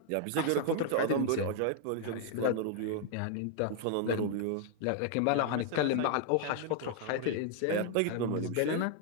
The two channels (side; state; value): both; different; correlation 0.00